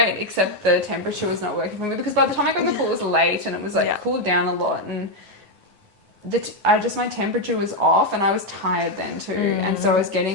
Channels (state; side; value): late; left; 9.5 ms